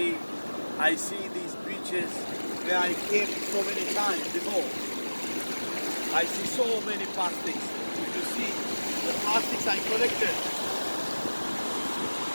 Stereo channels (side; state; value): both; inverted; correlation -1.00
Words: I see these beaches where I came so many times before. I see so many plastics. If you see the plastics I collected,